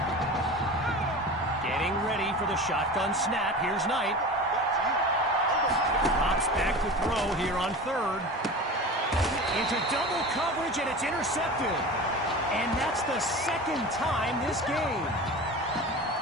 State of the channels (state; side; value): normal; both; correlation 0.32